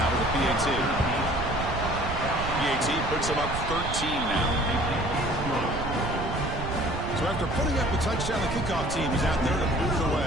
with the PAT. PAT puts them up 13 now. So after putting up a touchdown, the kickoff team is out there to boot it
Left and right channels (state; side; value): noise; right; rumble, 6 dB below the sound